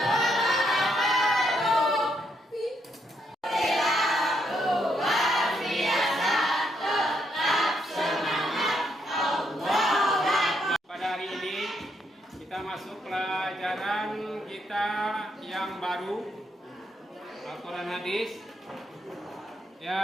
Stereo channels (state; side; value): normal; both; correlation 0.76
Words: Perilaku luar biasa, tetap semangat. Allahu Akbar. Pada hari ini kita masuk pelajaran kita yang baru, Al-Quran Hadis,